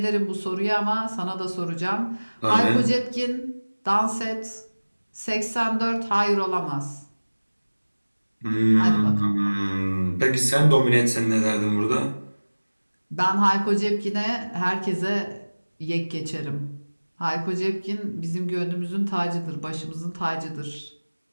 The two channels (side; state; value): both; inverted; correlation -1.00